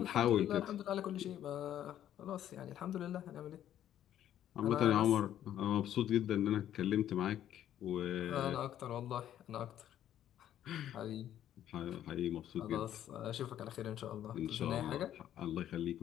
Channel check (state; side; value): quieter; right; 11.3 dB